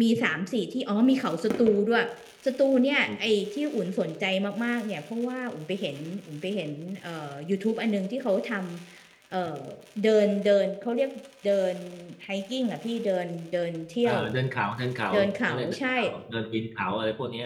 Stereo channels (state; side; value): identical; both; correlation 1.00